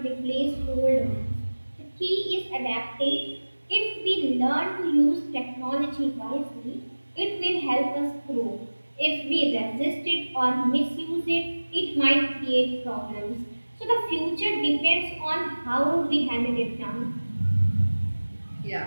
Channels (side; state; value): both; inverted; correlation -1.00